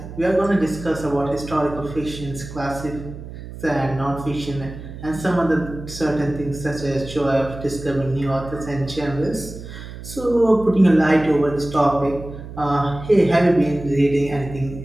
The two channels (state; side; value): noise; right; hum, 12 dB below the sound